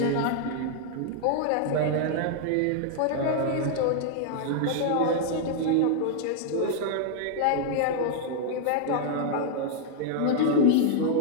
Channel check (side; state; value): both; different; correlation -0.01